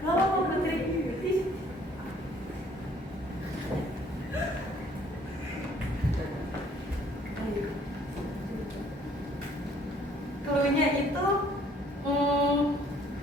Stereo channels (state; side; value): normal; both; correlation 0.60